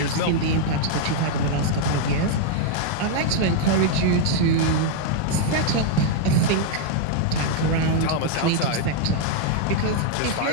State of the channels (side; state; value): both; different; correlation 0.00